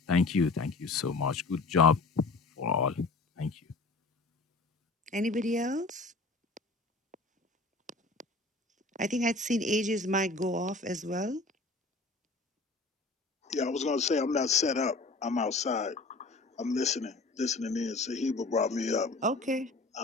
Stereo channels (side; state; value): right; quieter; 3.4 dB